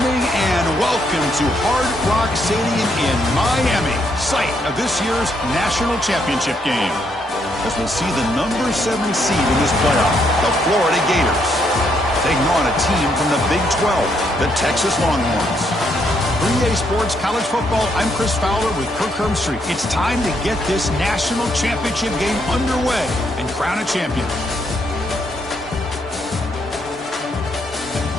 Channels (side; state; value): both; normal; correlation 0.74